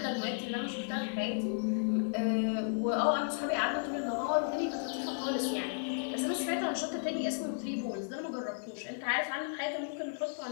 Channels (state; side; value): silent; right; 55 dB below the other